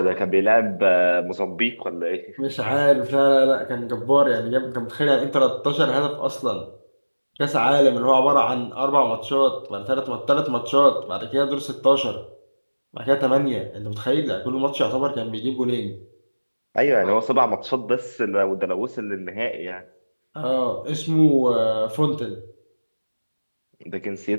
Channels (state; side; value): inverted; both; correlation -1.00